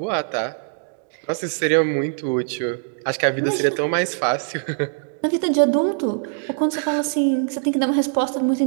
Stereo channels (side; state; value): left; silent; digital silence